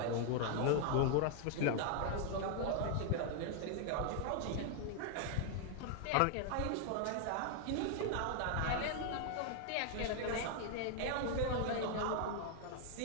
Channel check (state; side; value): different; both; correlation 0.00